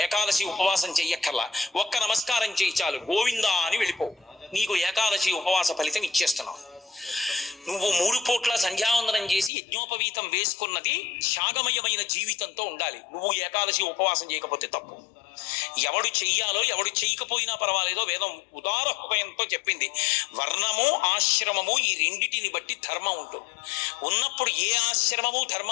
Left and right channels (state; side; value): drops out; right; at 9.5 s